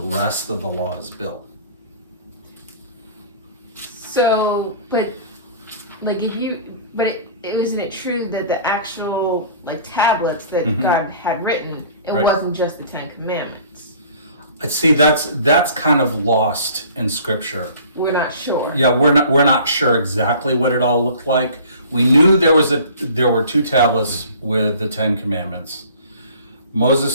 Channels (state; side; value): inverted; both; correlation -0.47